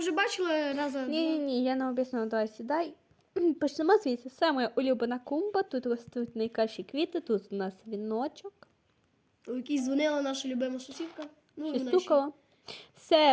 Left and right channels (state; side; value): identical; both; correlation 1.00